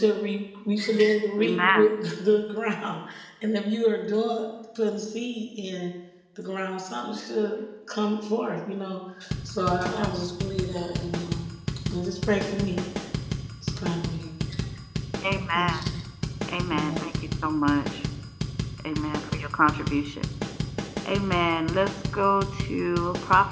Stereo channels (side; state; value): both; identical; correlation 1.00